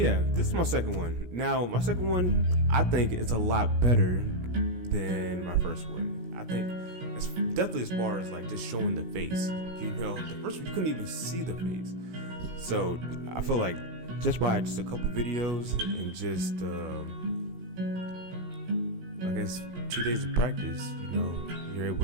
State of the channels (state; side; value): late; left; 17 ms